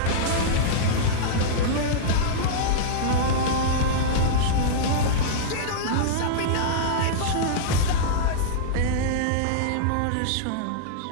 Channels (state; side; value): different; both; correlation -0.02